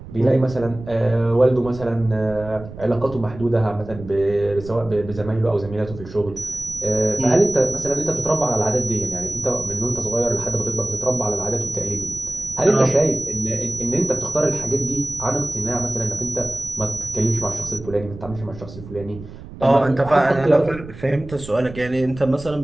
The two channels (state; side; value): noise; right; rumble, 14 dB below the sound